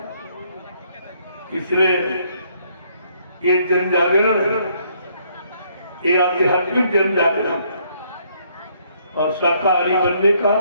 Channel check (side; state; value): both; inverted; correlation -0.68